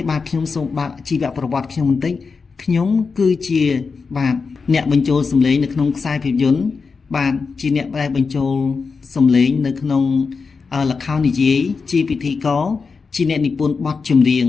បាទខ្ញុំសូមបើកជីវប្រវត្តិខ្ញុំបន្តិចខ្ញុំគឺជាបាទអ្នកបញ្ចូលសំឡេងនៅក្នុងខ្សែភាពយន្តបាទជាអ្នកដែលបញ្ចូលសំឡេងនៅក្នុងល្ខោននិយាយជាពិធីករជាអ្នកនិពន្ធបទចម្រៀង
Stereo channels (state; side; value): quieter; right; 4.9 dB